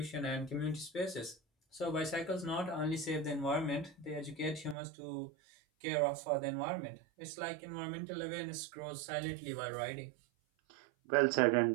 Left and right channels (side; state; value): left; drops out; at 4.8 s